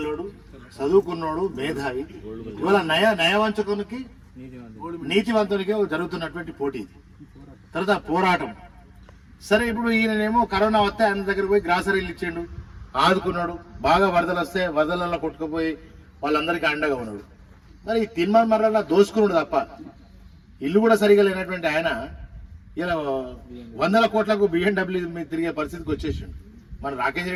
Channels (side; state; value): both; identical; correlation 1.00